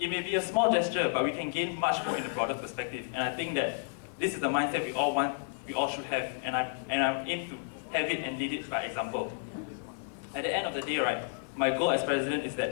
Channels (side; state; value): right; silent; 57 dB below the other